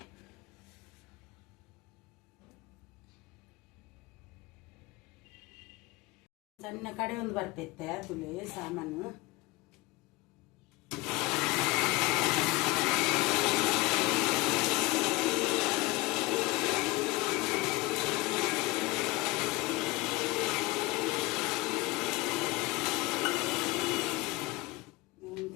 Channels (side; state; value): right; quieter; 22.1 dB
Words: ಸಣ್ಣ ಕಡೆ ಒಂದು ಬರ್ಪೈತೆ ತುಳಿ ಸಾಮಾನು